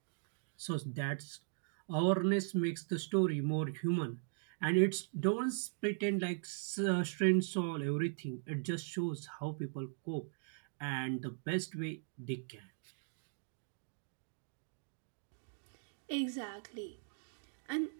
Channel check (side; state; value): left; silent; digital silence